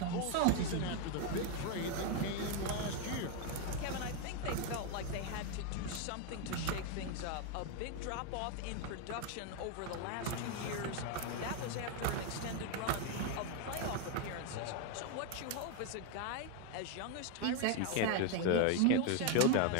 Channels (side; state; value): both; different; correlation 0.01